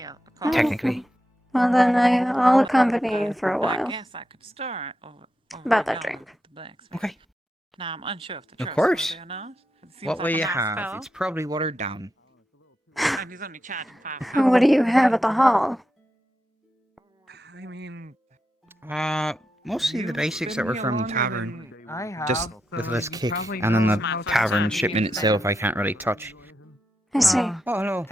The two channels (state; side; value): normal; both; correlation 0.86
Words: Oh, Technically. well, then I'll accompany you for a I while. guess I could start over About that down drink. with the blacksmith. Okay. Now, I'm unsure if the Of trust course. or not. It seems What like will a you nice have? fellow. It's probably watered down. And he's only charging $5. What do you have at the hall? I mean, Mostly the you've basics been that were here from the longer tavern. than I have, Just so with less you kick, probably and then know the how to tavern time shipment to use itself them. I can't really touch. I see. Oh, hello.